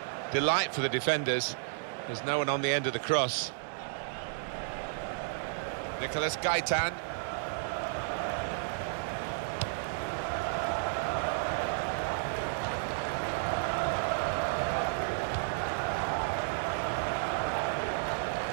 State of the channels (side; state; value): left; silent; 56 dB below the other